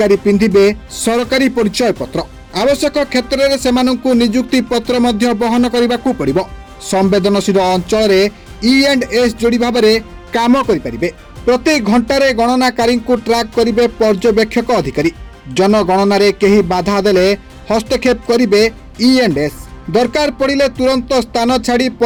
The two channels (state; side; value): identical; both; correlation 1.00